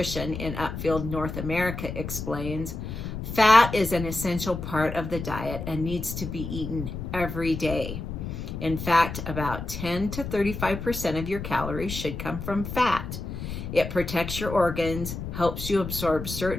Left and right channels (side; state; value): left; noise; rumble, 7 dB below the sound